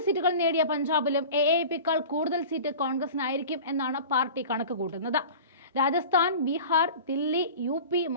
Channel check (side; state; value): both; inverted; correlation -0.37